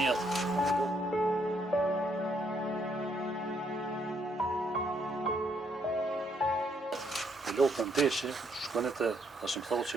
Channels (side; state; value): both; normal; correlation 0.72